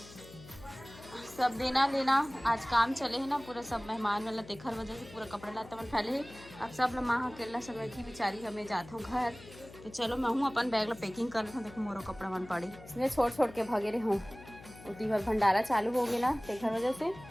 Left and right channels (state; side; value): noise; left; hum, 18 dB below the sound